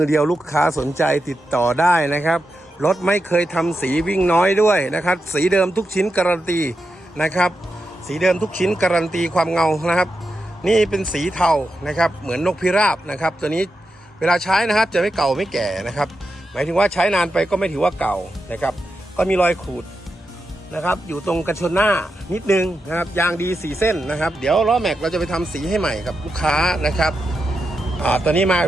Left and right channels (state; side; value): normal; both; correlation 0.88